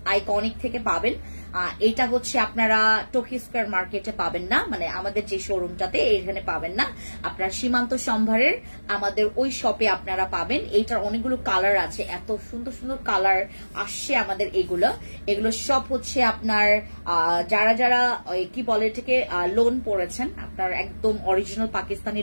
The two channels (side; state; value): both; inverted; correlation -1.00